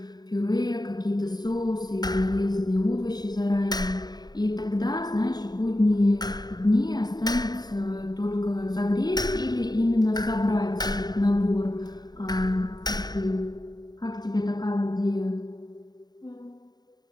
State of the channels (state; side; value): late; right; 0.20 ms